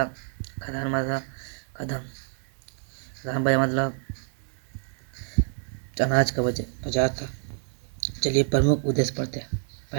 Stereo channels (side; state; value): left; silent; digital silence